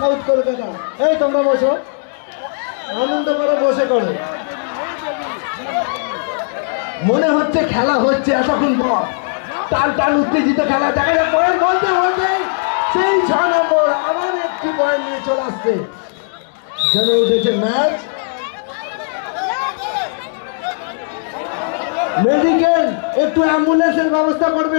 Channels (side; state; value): right; silent; 63 dB below the other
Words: কলকাতা এই তোমরা বসো আনন্দ করে বসে করো মনে হচ্ছে খেলা হচ্ছে এতক্ষণ পর টান টান উত্তেজিত খেলা দেখা যায় পয়েন্ট বলতে বলতে সেই 6 নম্বর আবার একটি পয়েন্ট নিয়ে চলে আসছে জমে উঠেছে ম্যাচ মেডিকেল একটু অ্যাম্বুলেন্সের ব্যবস্থা